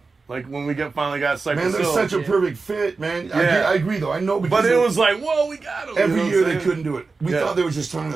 Like, when we finally got Cypress Hill. Man, they're such a perfect fit, man. Yeah. I agree, though. I know because... But it was like, whoa, we got him. Every year they couldn't do it. We thought they were just turning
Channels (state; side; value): quieter; left; 4.2 dB